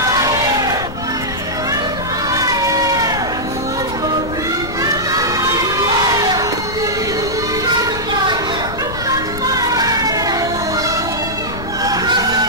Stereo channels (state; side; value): noise; left; rumble, 10 dB below the sound